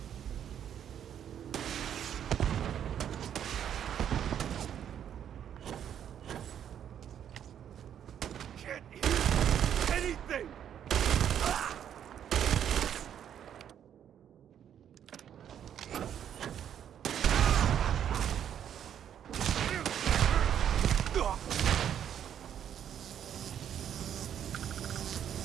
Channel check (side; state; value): left; quieter; 9.5 dB